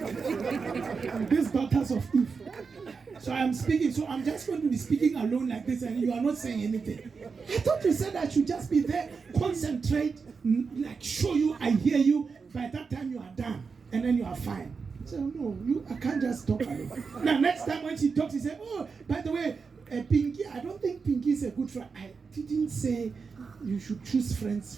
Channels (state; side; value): quieter; left; 5.1 dB